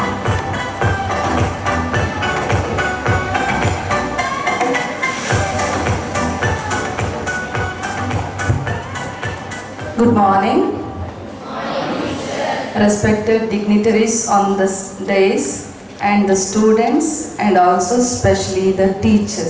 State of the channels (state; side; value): identical; both; correlation 1.00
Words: Good morning. Respected dignitaries on this days and the students and also especially the